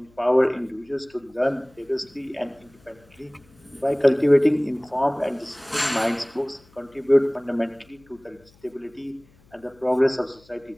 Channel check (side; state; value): left; noise; hum, 29 dB below the sound